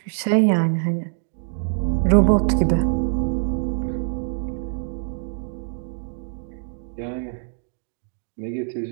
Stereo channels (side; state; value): left; silent; digital silence